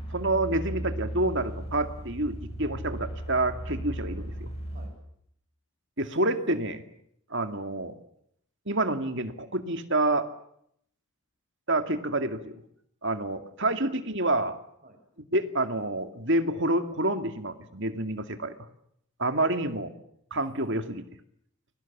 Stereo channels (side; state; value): both; normal; correlation -0.10